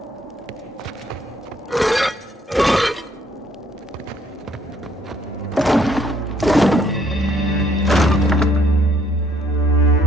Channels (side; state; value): both; normal; correlation 0.66